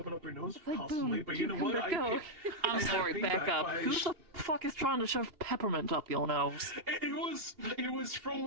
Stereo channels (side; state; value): left; late; 2.8 ms